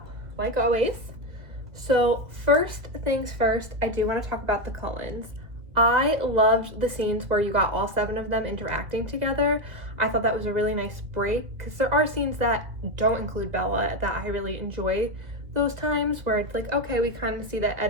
like always. So first things first, I do want to talk about the Cullens. I loved the scenes where you got all 7 of them interacting together. I thought that was a really nice break, because there are scenes that don't include Bella that I really enjoy those times where it's like, okay, we kind of see that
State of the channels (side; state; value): left; late; 2.2 ms